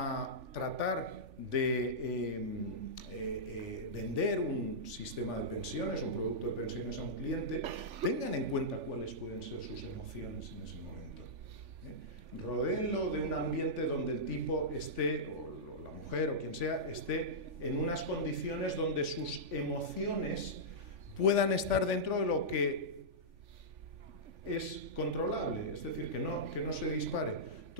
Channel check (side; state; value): left; late; 3.5 ms